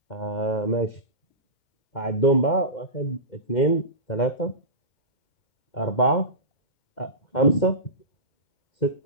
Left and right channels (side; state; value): right; late; 2.1 ms